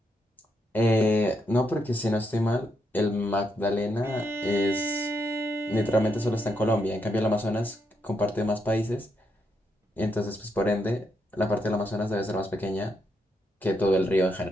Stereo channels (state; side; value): normal; both; correlation 0.80